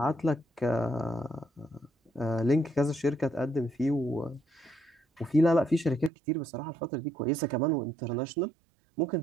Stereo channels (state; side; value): drops out; left; at 6.1 s